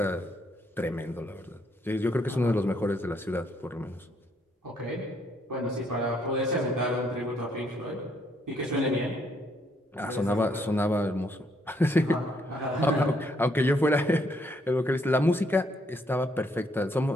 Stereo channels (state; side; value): normal; both; correlation 0.71